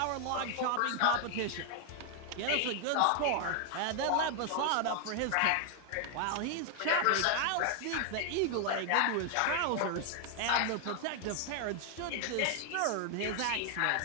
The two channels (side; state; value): both; different; correlation 0.00